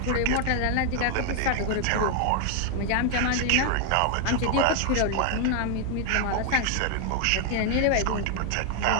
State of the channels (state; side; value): different; both; correlation 0.00